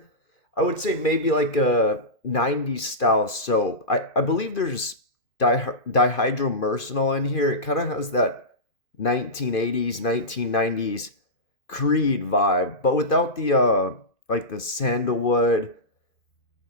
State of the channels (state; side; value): late; right; 2.5 ms